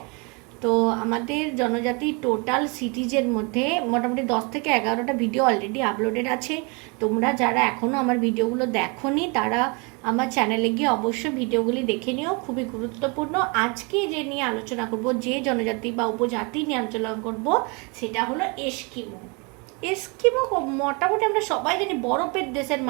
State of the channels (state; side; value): quieter; left; 31.2 dB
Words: তো আমাদের জনজাতি টোটাল সিটিজের মধ্যে মোটামুটি 10 থেকে 11টা ভিডিও অলরেডি আপলোডেড আছে। তোমরা যারা এখনও আমার ভিডিওগুলো দেখোনি তারা আমার চ্যানেলে গিয়ে অবশ্যই ভিডিওগুলি দেখে নিও, খুবই গুরুত্বপূর্ণ। আজকে যে নিয়ে আলোচনা করব, যে জনজাতি বা উপজাতি নিয়ে আলোচনা করব, সেটা হলো এস্কিমো। এস্কিমো মোটামুটি আমরা সবাই জানি বরফের দেশের